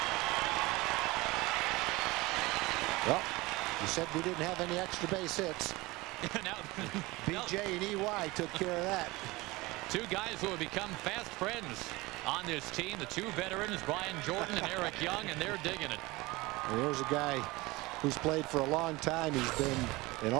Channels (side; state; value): left; quieter; 21.7 dB